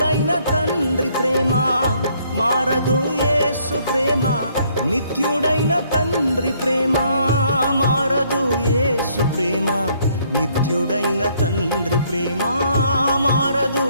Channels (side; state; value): both; inverted; correlation -0.67